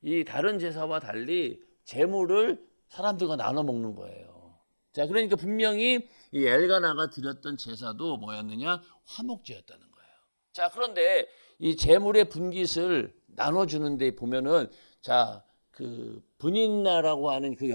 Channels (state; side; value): inverted; both; correlation -1.00